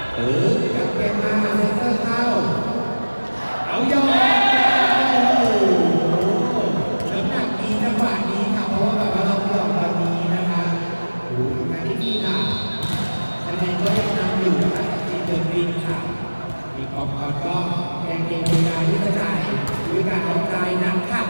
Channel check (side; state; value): both; inverted; correlation -1.00